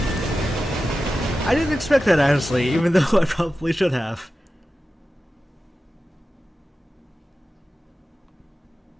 I didn't expect that, honestly, even though I probably should have.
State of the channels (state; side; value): normal; both; correlation 0.93